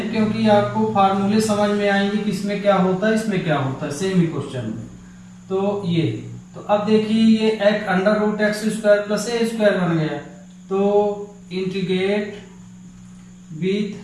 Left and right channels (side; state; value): both; identical; correlation 1.00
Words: क्योंकि आपको फार्मूले समझ में आएंगे कि इसमें क्या होता है, इसमें क्या होता है, सेम ही क्वेश्चन में। तो ये, तो अब देखिए ये एक under root x square plus a square बन गया। तो integrate